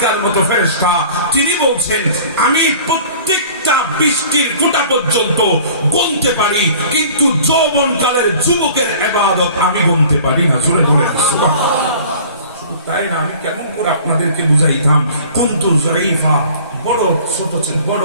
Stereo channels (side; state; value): both; inverted; correlation -0.47